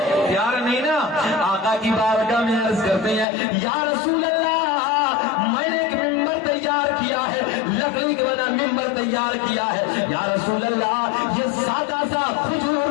پیار نہیں نا. آقا کی بارگاہ میں عرض کرتے ہیں یا رسول اللہ میں نے ایک ممبر تیار کیا ہے لکڑی کے بنا ممبر تیار کیا ہے یا رسول اللہ یہ سادہ سا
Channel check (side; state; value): right; drops out; at 3.2 s